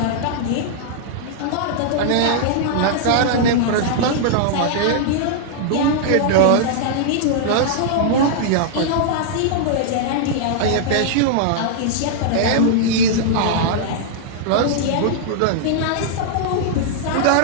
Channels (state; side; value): different; both; correlation -0.01